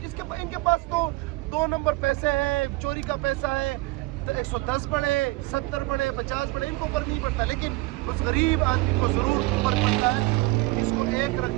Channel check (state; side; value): quieter; left; 21.7 dB